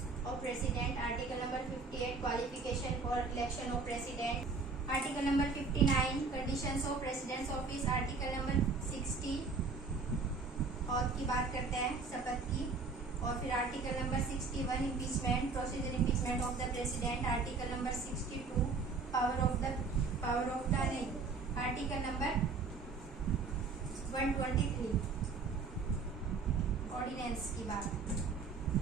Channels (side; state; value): left; quieter; 4.3 dB